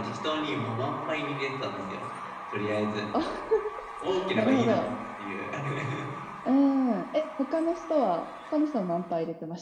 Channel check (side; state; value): both; identical; correlation 1.00